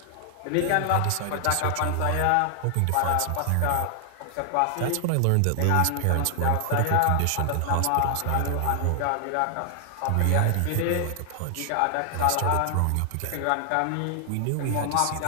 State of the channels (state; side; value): different; both; correlation 0.00